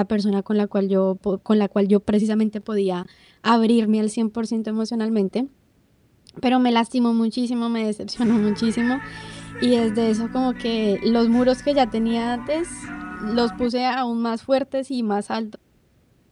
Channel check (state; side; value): identical; both; correlation 1.00